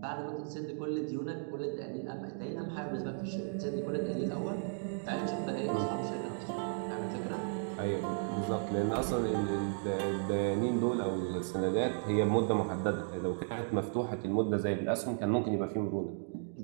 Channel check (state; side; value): silent; left; digital silence